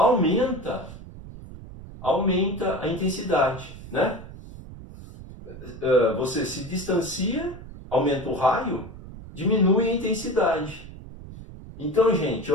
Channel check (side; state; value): right; noise; rumble, 14 dB below the sound